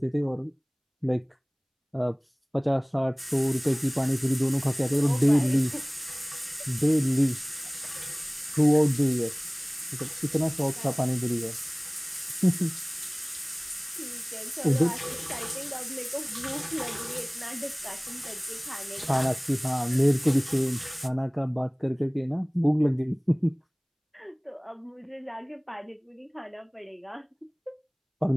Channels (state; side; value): identical; both; correlation 1.00